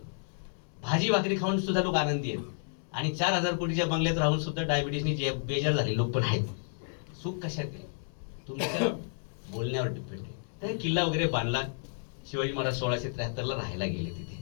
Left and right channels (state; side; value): silent; right; digital silence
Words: भाजी भाकरी खाऊन सुद्धा लोक आनंदी आहेत आणि 4,000 कोटीच्या बंगल्यात राहून सुद्धा डायबिटीसनी बेजार झाले लोक पण आहेत. सुख कशात आहे? तुमच्या बोलण्यावर डिपेंड आहे. तर किल्ला वगैरे बांधला. शिवाजी महाराज 1673ला राहायला गेले तिथे.